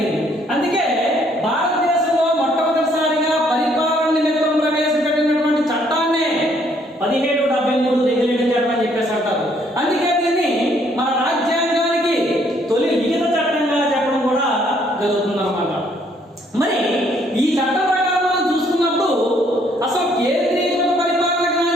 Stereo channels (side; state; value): both; normal; correlation 0.66